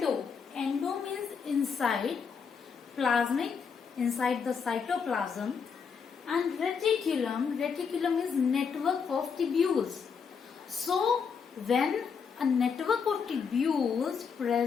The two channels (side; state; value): right; quieter; 6.1 dB